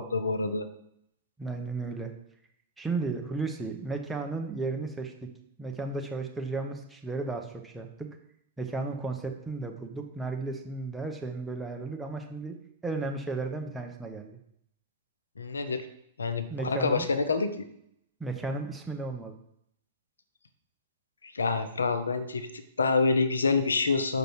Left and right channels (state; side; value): inverted; both; correlation -0.32